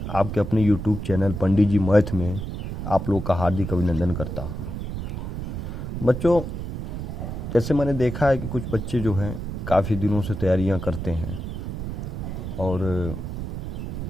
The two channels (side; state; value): right; noise; rumble, 5 dB below the sound